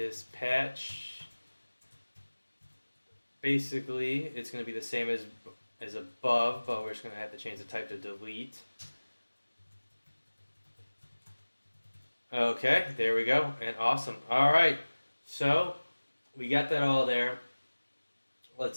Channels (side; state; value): both; inverted; correlation -1.00